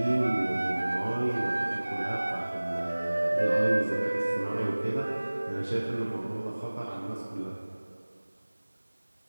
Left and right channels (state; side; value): inverted; both; correlation -1.00